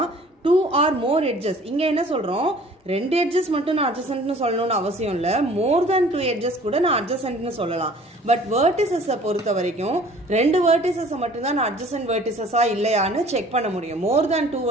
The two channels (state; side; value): normal; both; correlation 0.51